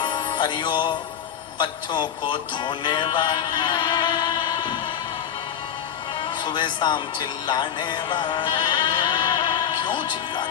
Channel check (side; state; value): right; quieter; 9.1 dB